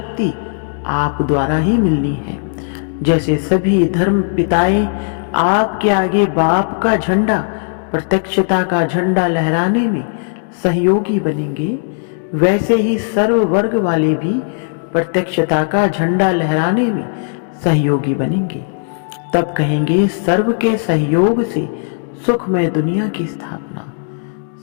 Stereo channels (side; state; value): right; silent; digital silence